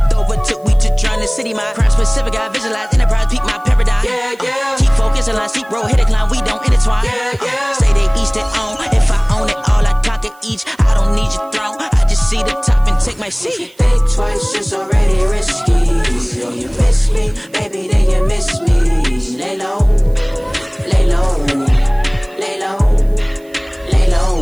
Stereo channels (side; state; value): right; noise; hiss, 29 dB below the sound